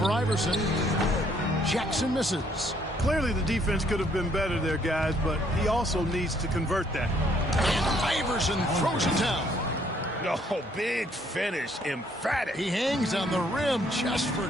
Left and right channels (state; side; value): normal; both; correlation 0.66